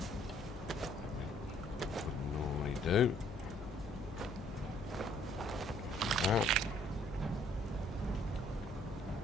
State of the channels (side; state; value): both; normal; correlation 0.63